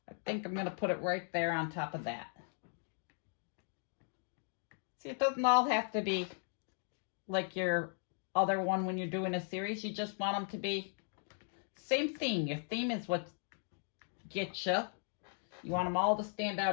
I think I'm going to put it right there on top of that. See, it doesn't all have to be like your other one when you're doing a series. You just want them to be same theme. Your theme is what gets you. You want them all to stand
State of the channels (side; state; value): right; silent; 53 dB below the other